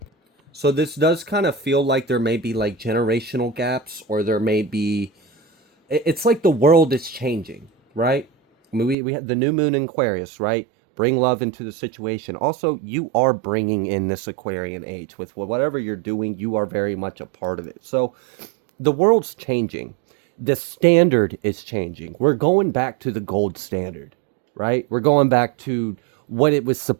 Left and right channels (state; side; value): drops out; left; at 9.0 s